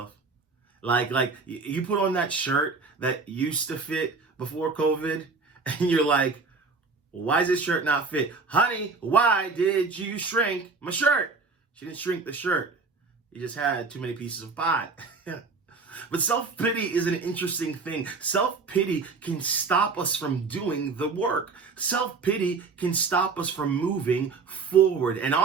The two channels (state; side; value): quieter; left; 4.5 dB